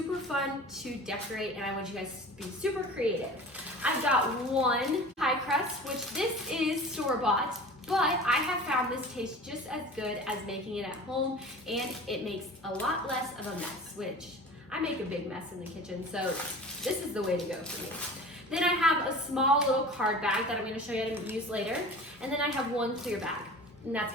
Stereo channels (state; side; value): normal; both; correlation 0.39